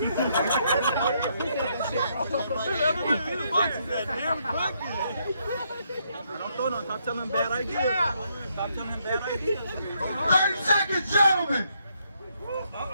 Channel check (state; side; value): inverted; both; correlation -0.74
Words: Don't throw no. Stop telling him bad ideas. Stop telling him bad ideas. 30 seconds, gentlemen!